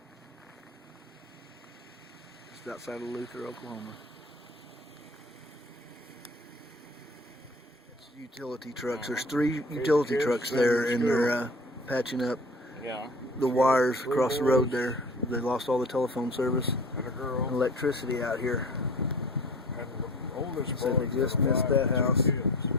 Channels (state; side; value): normal; both; correlation 0.43